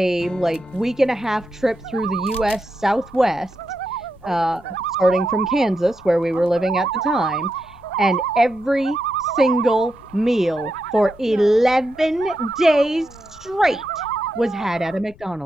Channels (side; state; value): left; noise; rumble, 24 dB below the sound